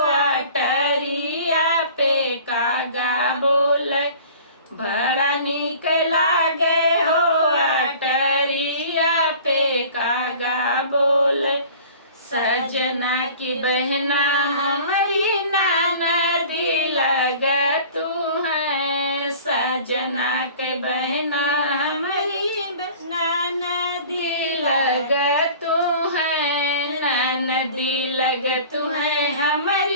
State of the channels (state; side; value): inverted; both; correlation -0.45